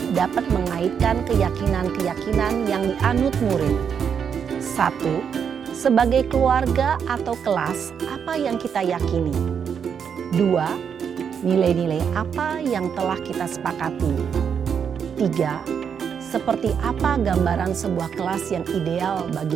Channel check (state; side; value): quieter; left; 7.3 dB